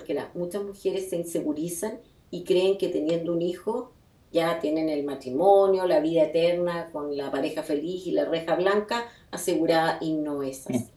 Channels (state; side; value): identical; both; correlation 1.00